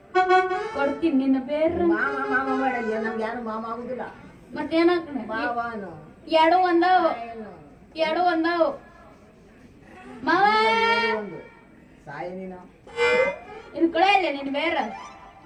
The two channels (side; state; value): both; identical; correlation 1.00